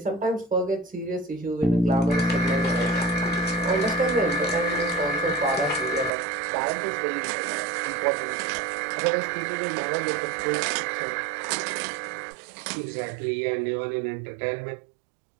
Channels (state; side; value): drops out; left; at 6.1 s